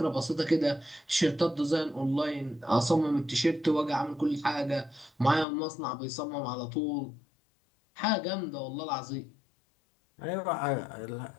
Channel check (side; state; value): right; drops out; at 5.5 s